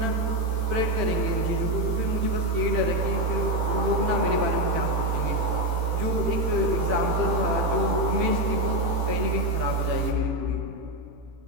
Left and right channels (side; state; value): left; late; 18 ms